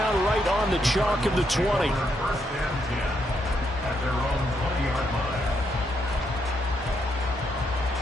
right on the chalk of the 20. First and 10 at their own 20-yard line.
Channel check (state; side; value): normal; both; correlation 0.78